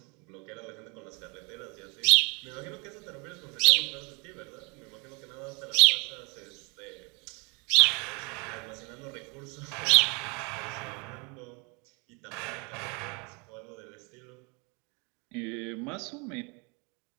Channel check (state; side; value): quieter; left; 31.6 dB